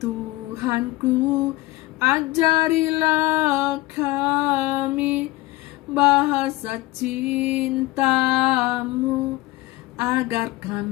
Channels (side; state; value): right; quieter; 19.9 dB